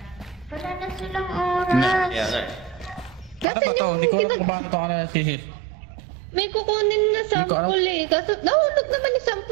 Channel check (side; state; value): left; drops out; at 3.5 s